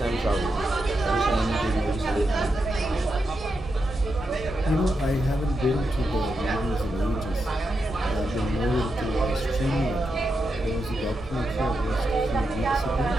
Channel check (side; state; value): both; normal; correlation 0.86